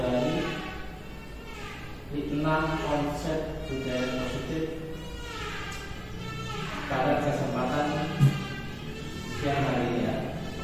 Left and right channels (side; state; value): both; identical; correlation 1.00